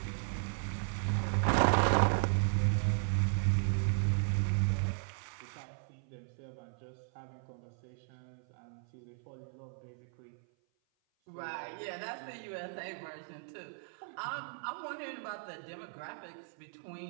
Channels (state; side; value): silent; left; 54 dB below the other